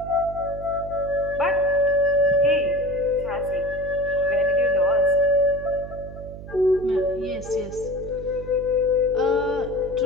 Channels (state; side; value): noise; right; hum, 13 dB below the sound